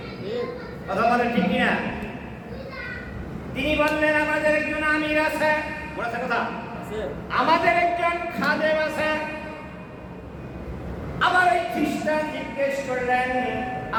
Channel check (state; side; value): identical; both; correlation 1.00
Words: কথা বলেন ঠিক কিনা? তিনি বললেন আমাদের একজন আমির আছে, বলেছে কথা, আমাদের একজন খাদেম আছে। আবার ওই খ্রিস্টান জিজ্ঞেস করলেন